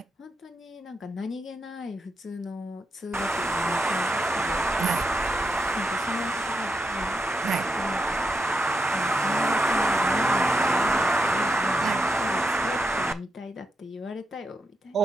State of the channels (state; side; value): normal; both; correlation 0.84